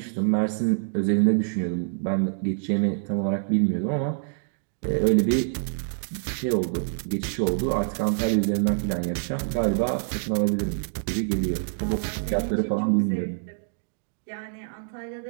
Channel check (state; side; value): silent; left; digital silence